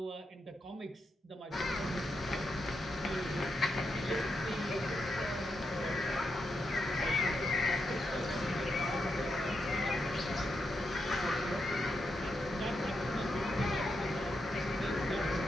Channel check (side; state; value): both; normal; correlation 0.84